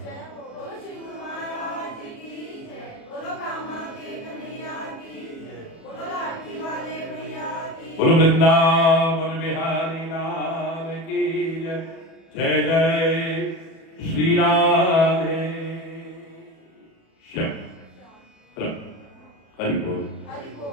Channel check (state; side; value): late; right; 36 ms